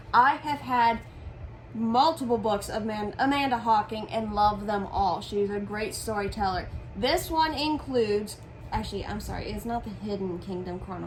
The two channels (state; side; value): identical; both; correlation 1.00